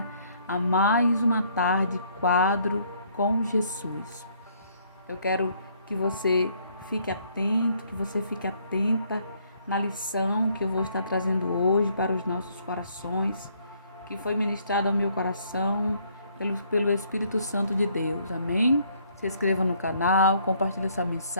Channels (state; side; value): inverted; both; correlation -0.65